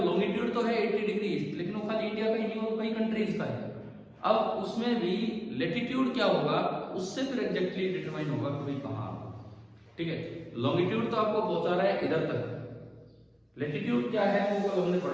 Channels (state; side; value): identical; both; correlation 1.00